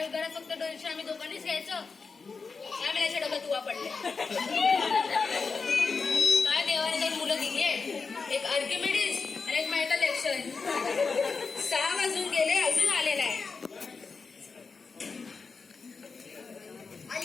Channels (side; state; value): right; quieter; 4.7 dB